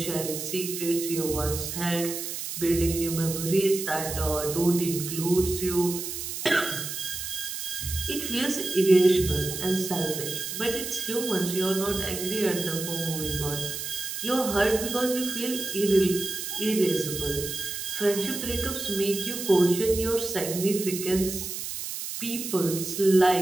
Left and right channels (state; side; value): noise; right; hiss, 6 dB below the sound